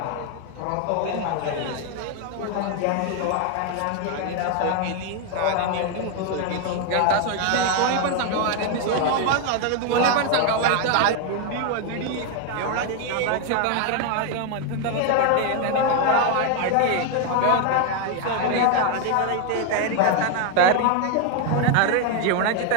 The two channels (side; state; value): both; different; correlation 0.01